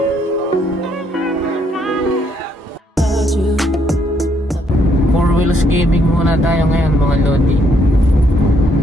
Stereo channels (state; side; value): normal; both; correlation 0.71